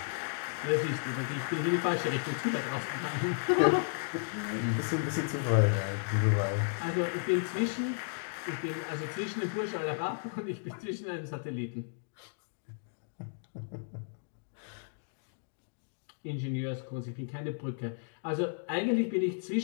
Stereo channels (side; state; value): right; silent; digital silence